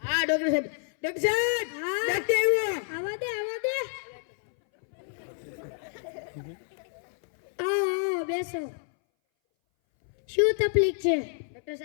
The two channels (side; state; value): right; silent; 59 dB below the other